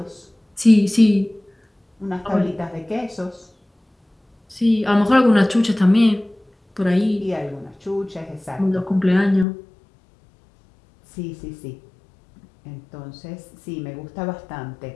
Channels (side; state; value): right; drops out; at 9.5 s